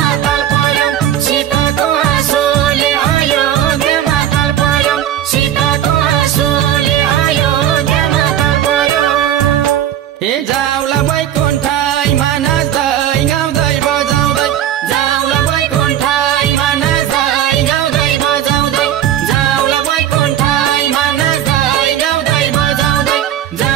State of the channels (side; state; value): left; quieter; 10.9 dB